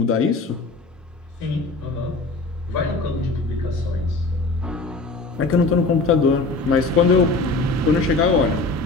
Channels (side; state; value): right; quieter; 3.4 dB